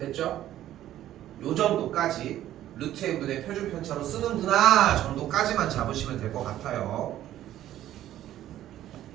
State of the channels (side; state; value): left; quieter; 12.8 dB